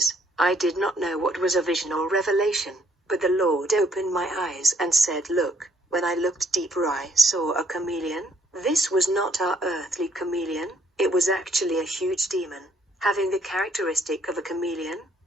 I did not know what was a vision or revelation, but the Lord opened my eyes and said, look. When I looked deeper, I saw a chameleon. This was not our earthly chameleon, it was actually a huge demon, having the characteristic of a chameleon.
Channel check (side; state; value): both; normal; correlation 0.66